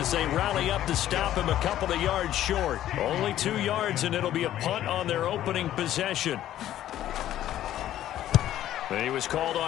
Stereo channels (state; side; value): quieter; right; 12.6 dB